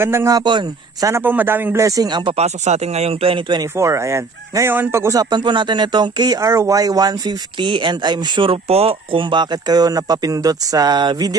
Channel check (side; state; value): left; quieter; 4.3 dB